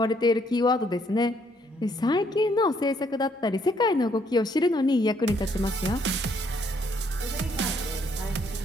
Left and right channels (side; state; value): both; normal; correlation 0.69